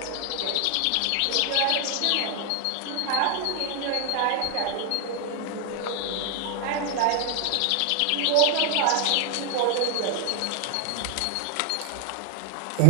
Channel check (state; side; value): different; both; correlation 0.00